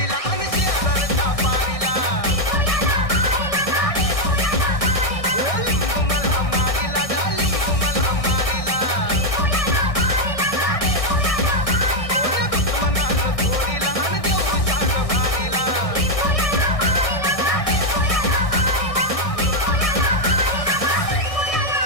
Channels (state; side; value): late; right; 1.6 ms